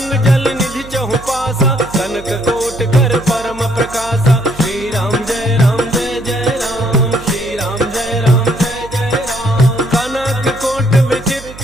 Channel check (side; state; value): right; noise; hum, 16 dB below the sound